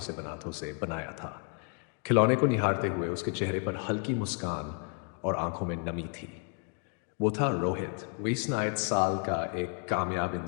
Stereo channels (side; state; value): right; quieter; 38.7 dB